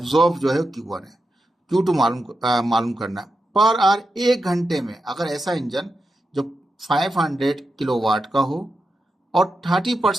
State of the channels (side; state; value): both; normal; correlation 0.88